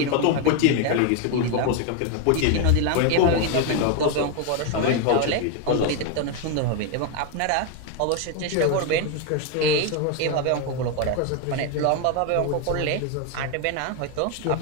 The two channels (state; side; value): different; both; correlation 0.01